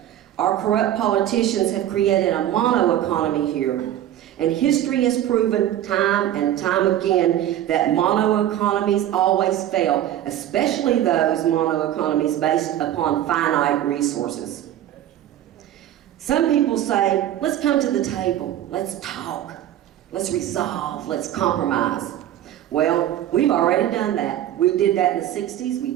Our corrupt politicians have created a mono-economy here. And history has proven time and time again that mono-economies always fail, especially those mono-economies based upon finite resources. Some people say, let's come to the table, let's talk, let's resolve, let's compromise. Well, we've already done that. We did that in the 60s, we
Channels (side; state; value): left; quieter; 12.0 dB